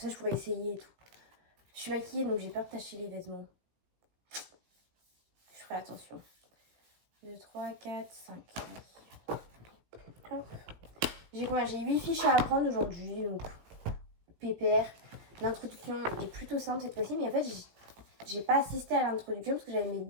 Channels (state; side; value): late; left; 17 ms